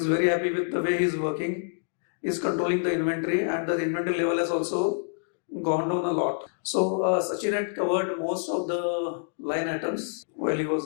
very happy with the way he's working. He's controlling the inventory, and the inventory level has also gone down a lot. So Sachin had covered most of the line items while he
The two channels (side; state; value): right; silent; digital silence